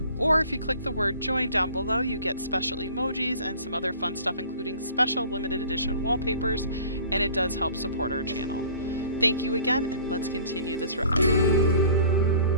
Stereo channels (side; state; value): both; inverted; correlation -0.48